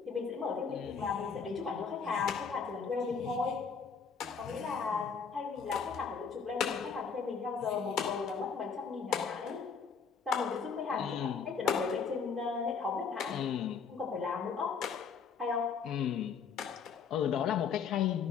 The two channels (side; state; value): right; quieter; 6.0 dB